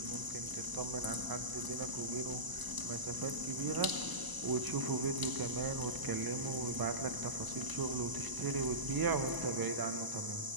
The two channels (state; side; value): late; left; 1.0 ms